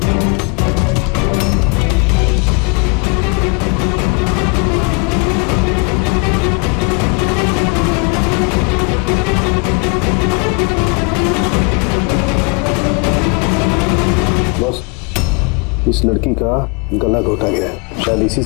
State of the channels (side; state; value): right; quieter; 31.4 dB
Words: इस लड़की का गला घोटा गया है, शायद इसी